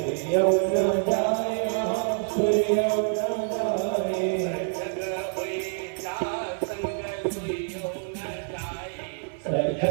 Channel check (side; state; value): left; silent; 58 dB below the other